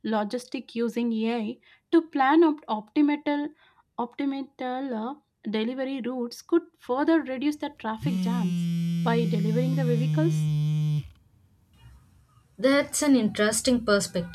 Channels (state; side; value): identical; both; correlation 1.00